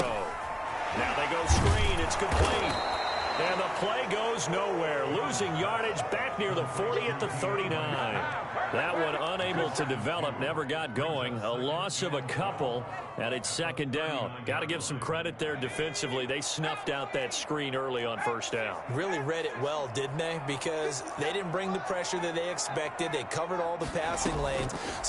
they go screen. It's complete. And the play goes nowhere. Losing yardage back near the 40 at the 39. That one unable to develop, never got going. A loss of a couple, and it's 2nd down. Got to give some credit there defensively. They snuffed out that screen early on 1st down. Really read it well, didn't they? Because they didn't bring the pressure that they expected. They covered all the passing lanes.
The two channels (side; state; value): both; identical; correlation 1.00